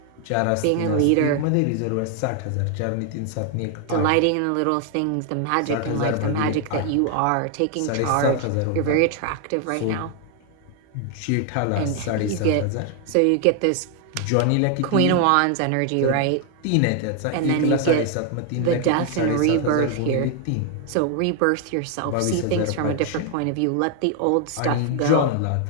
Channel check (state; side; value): different; both; correlation 0.00